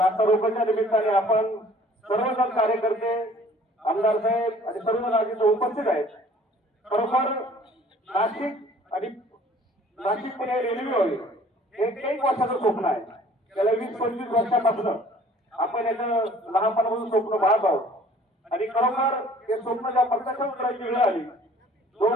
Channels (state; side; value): normal; both; correlation 0.53